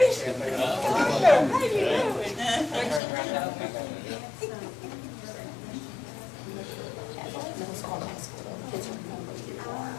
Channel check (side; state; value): right; drops out; at 3.0 s